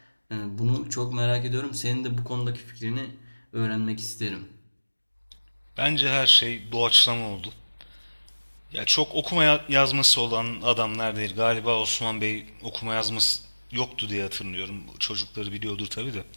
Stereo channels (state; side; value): inverted; both; correlation -1.00